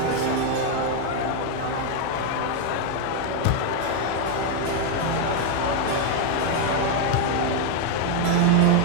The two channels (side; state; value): both; different; correlation 0.01